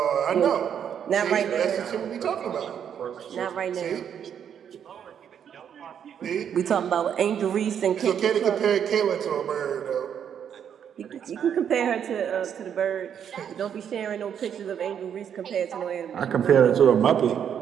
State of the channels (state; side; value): quieter; left; 8.5 dB